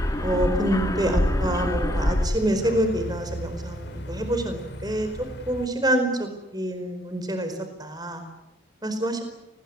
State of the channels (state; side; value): normal; both; correlation 0.68